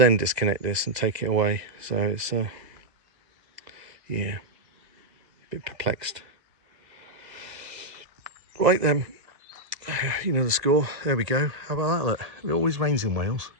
disconnect this and take it away. So it's, yeah, a bit perplexed. Right then, you know the score. There we go. How about that? Look, it always rains in Wales.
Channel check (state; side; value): late; left; 1.9 ms